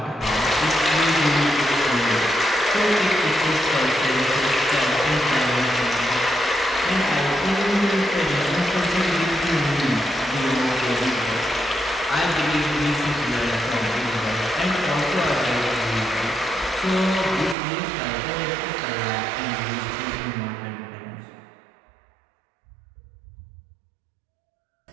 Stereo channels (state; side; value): drops out; left; at 17.6 s